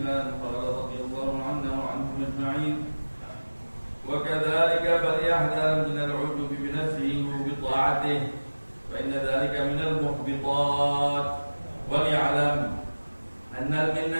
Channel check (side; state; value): both; inverted; correlation -1.00